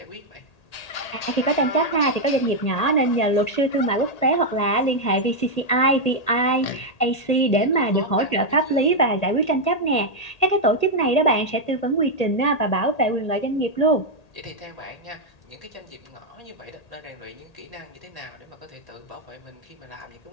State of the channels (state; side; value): late; right; 1.8 ms